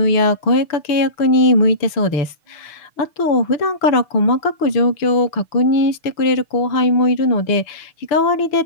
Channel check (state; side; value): late; right; 6.1 ms